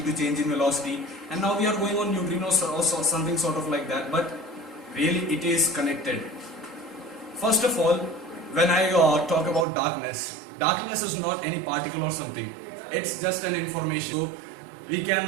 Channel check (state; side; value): drops out; left; at 9.7 s